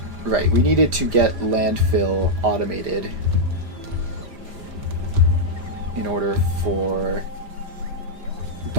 needed to get landfill automated in order for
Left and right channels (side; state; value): left; late; 5.0 ms